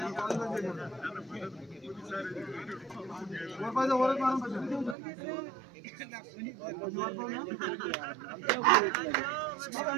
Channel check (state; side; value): drops out; left; at 5.0 s